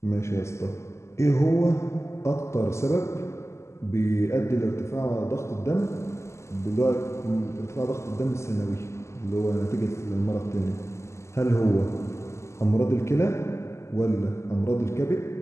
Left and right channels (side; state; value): right; late; 0.13 ms